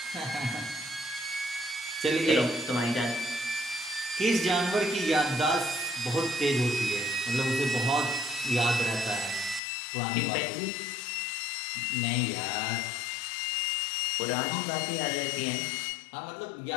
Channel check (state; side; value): drops out; right; at 9.6 s